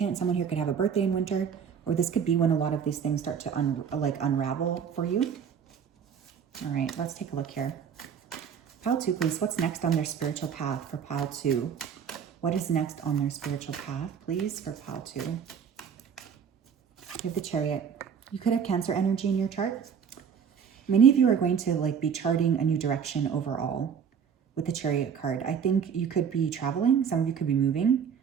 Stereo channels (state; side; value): quieter; left; 7.3 dB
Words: Someone here could have a birthday in winter, or this could be when a lot of these things start to unravel for you. All right, let's take a look here. Pile 2, please. What's next on their spiritual path for pile 2? What is next on their spiritual path, please, for pile 2? We have the Chariot. You could have Cancer energy in your chart. Many of you are going to be charting a new direction overall with the Chariot card. I think you could be traveling. Some of you could be moving.